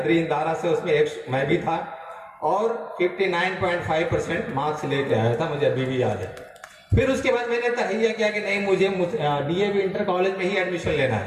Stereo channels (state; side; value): identical; both; correlation 1.00